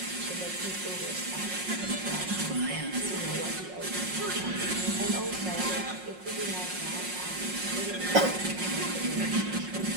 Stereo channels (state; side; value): late; left; 5.5 ms